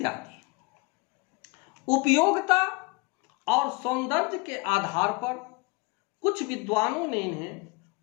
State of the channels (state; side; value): quieter; right; 26.9 dB